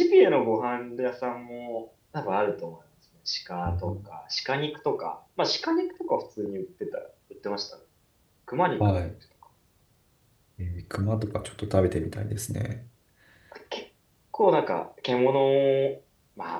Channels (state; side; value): identical; both; correlation 1.00